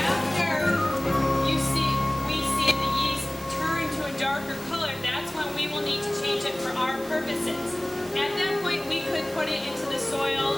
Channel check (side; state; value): right; noise; hiss, 18 dB below the sound